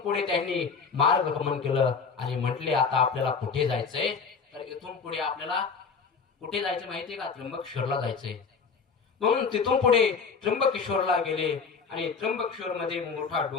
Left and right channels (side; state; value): right; quieter; 5.4 dB